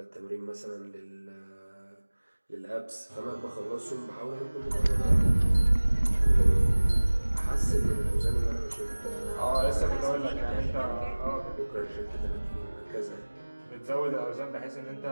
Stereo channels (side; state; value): both; inverted; correlation -1.00